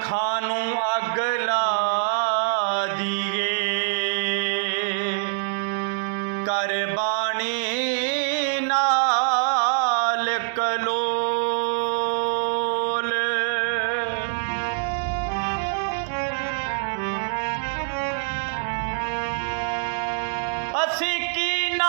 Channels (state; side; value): silent; left; digital silence